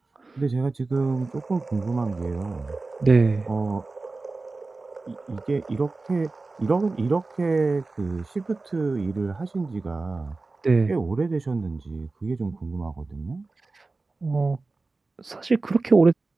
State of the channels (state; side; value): quieter; left; 3.6 dB